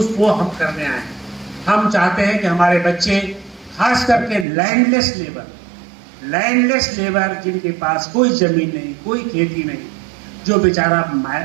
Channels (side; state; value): left; drops out; at 4.5 s